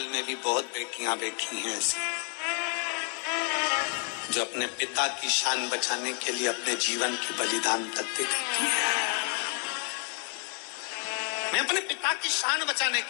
में भी बहुत बेटियां बैठी हैं ऐसी, जो अपने पिता की शान बचाने के लिए अपने जीवन की बलिदान तक दे देती है। मैं अपने पिता की शान बचाने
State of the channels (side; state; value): right; quieter; 35.3 dB